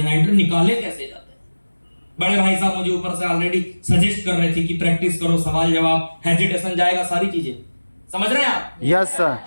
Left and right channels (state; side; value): inverted; both; correlation -1.00